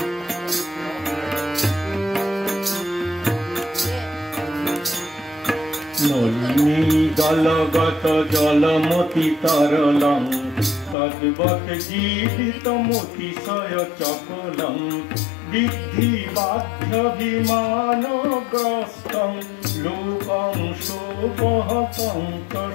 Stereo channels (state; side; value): drops out; right; at 11.0 s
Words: नलिनी दलगत जलमति तरलं तद्वत् जीवितमतिशय चपलं विद्धि बाध्यभिमानग्रस्तं लोकं शोपहतं च